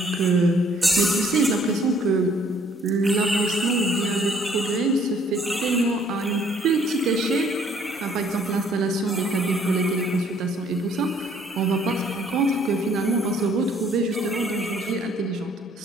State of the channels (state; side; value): normal; both; correlation 0.61